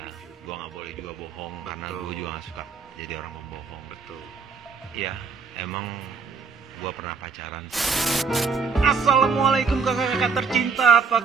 Gue nggak boleh juga bohong. Betul. Karena gue juga nggak suka jadi orang pembohong. Betul. Iya, emang gue pernah pacaran. Assalamualaikum kakak-kakak tercinta, apa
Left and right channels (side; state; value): left; quieter; 5.3 dB